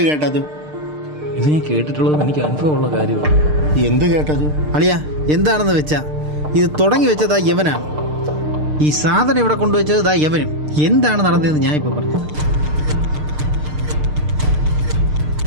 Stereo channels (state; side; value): late; left; 6.6 ms